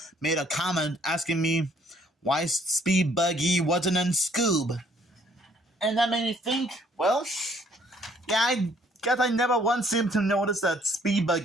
made a comment asking me why Speed Buggy wasn't in SCOOB. And that made me think, well, yeah, I guess I never once seemed to notice that Speed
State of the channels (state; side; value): normal; both; correlation 0.63